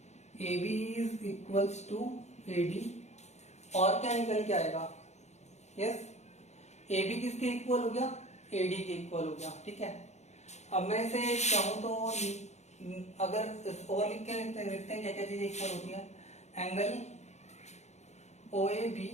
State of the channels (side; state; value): right; late; 0.33 ms